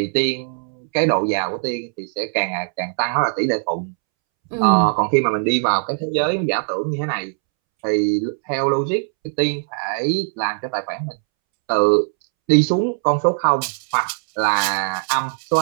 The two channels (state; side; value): silent; left; 65 dB below the other